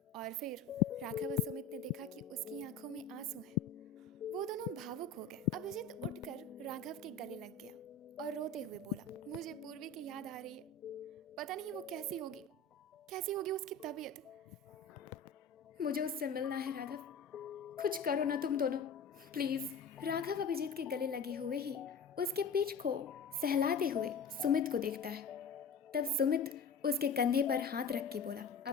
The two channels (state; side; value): quieter; right; 4.7 dB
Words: और फिर राघव और सुमित ने देखा कि उसकी आंखों में आंसू हैं। वो दोनों भावुक हो गए। अभिजीत उठकर राघव के गले लग गया और रोते हुए बोला, मुझे पूर्वी की याद आ रही है। पता नहीं वो कैसी होगी उसकी तबीयत। मुझे उससे मिलना है राघव, कुछ करो ना तुम दोनों प्लीज। राघव अभिजीत के गले लगे हुए ही उसके पीठ को सहलाते हुए सुमित को देखता है। तब सुमित उसके कंधे पर हाथ रख के बोला,